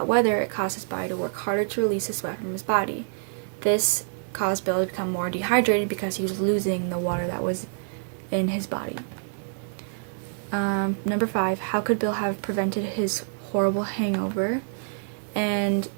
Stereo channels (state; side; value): silent; left; digital silence